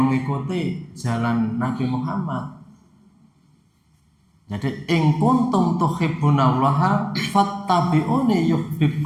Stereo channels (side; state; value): both; identical; correlation 1.00